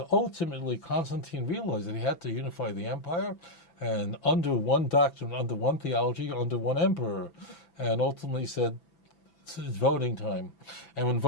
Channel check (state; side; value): late; right; 5.9 ms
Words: ultimately, Constantine realized that he had to unify the empire, and under one doctrine, under one theology, under one emperor. And ultimately said, it's voting time. And when